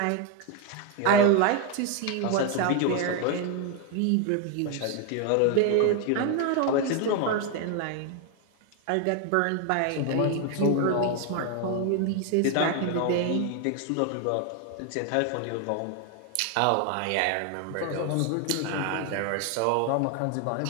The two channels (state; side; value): different; both; correlation 0.01